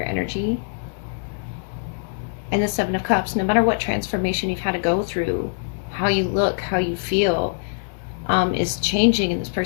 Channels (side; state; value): right; silent; digital silence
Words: energy. And the Seven of Cups, no matter what transformation you've had to go through, how you look, how you feel, is changing, and this